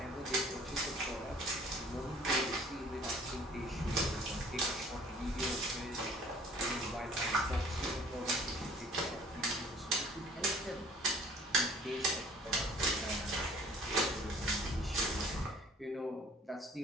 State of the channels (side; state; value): both; normal; correlation 0.52